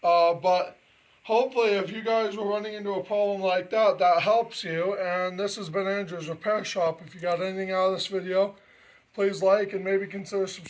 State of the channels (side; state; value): both; identical; correlation 1.00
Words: But hopefully if you guys were running into a problem like that, that helps you. And this has been Andrew's Repair Shop. If you got anything out of this video, please like and maybe consider